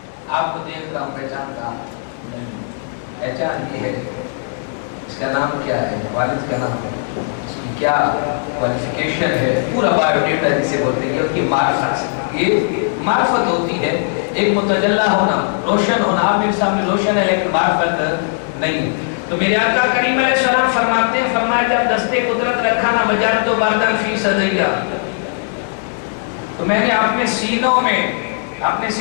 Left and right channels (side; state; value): right; silent; 66 dB below the other